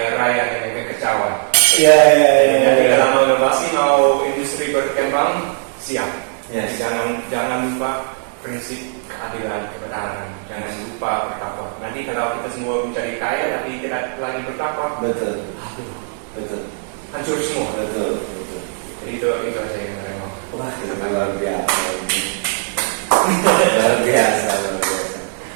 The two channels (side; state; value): left; silent; 58 dB below the other